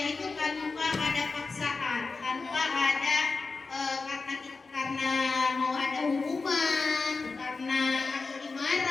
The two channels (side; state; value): right; quieter; 4.1 dB